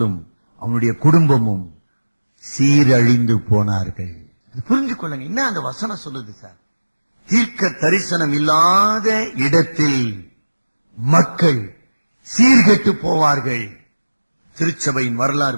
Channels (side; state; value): both; inverted; correlation -1.00